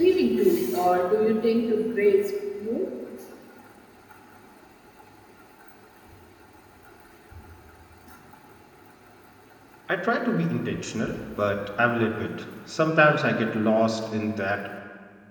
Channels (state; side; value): identical; both; correlation 1.00